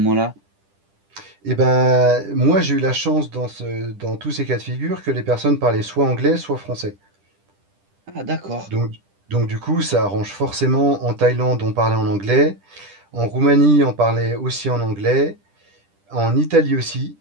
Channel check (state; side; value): late; left; 10 ms